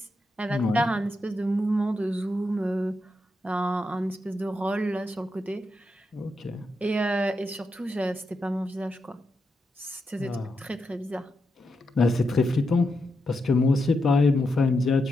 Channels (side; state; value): both; normal; correlation 0.85